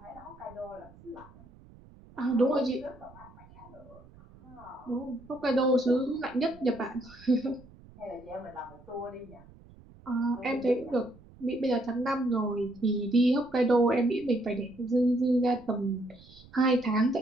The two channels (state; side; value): noise; right; rumble, 23 dB below the sound